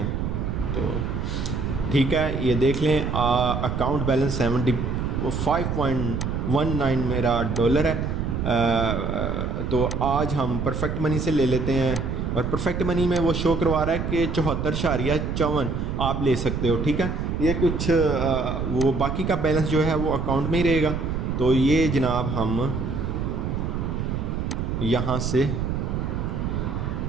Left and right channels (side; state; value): right; noise; rumble, 2 dB below the sound